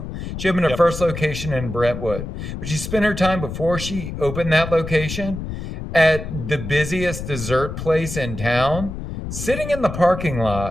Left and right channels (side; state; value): left; noise; rumble, 7 dB below the sound